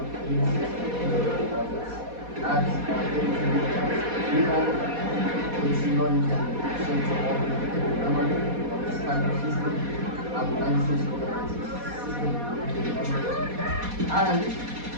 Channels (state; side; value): late; left; 4.2 ms